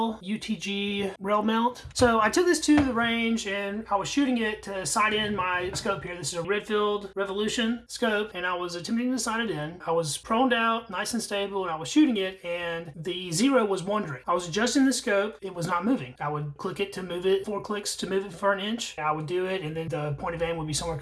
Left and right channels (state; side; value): identical; both; correlation 1.00